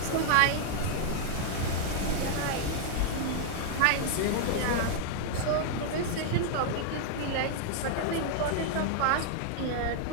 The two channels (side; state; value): both; different; correlation -0.01